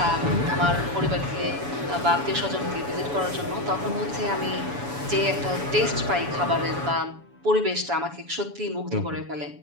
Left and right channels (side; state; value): left; late; 7.1 ms